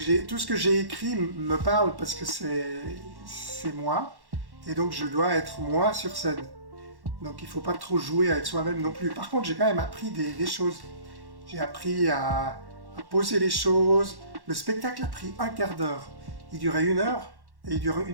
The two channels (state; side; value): late; left; 1.1 ms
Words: ce que j'ai écrit me parle parce que c'est moi, et donc je dois être moi sur scène. Donc il ne faut pas trop jouer avec soi-même non plus. Par contre, j'ai quand même appris des choses. J'ai appris à poser les choses. Le spectacle a pris un quart d'heure. Il durait 1 heure, et il dure